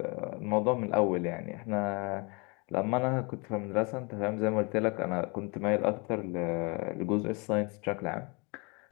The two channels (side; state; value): right; quieter; 30.4 dB